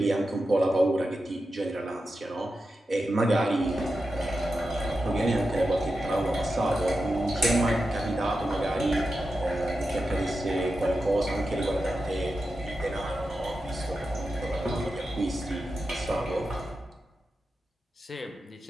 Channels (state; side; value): normal; both; correlation 0.90